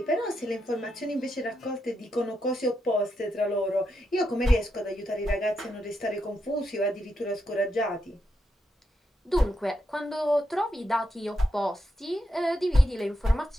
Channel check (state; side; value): normal; both; correlation 0.83